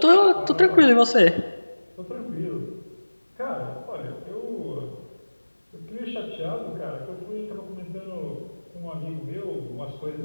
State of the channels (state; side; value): inverted; both; correlation -1.00